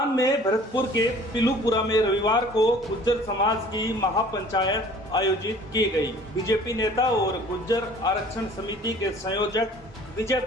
में भरतपुर के पिलूपुरा में रविवार को गुज्जर समाज की महापंचायत आयोजित की गई। बीजेपी नेता और गुज्जर आरक्षण समिति के संयोजक विजय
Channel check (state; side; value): normal; both; correlation 0.50